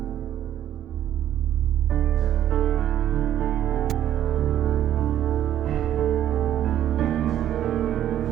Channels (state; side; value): quieter; left; 11.3 dB